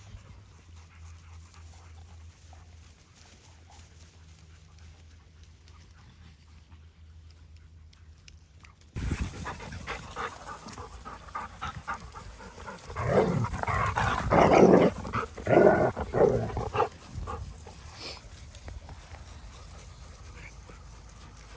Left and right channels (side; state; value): both; identical; correlation 1.00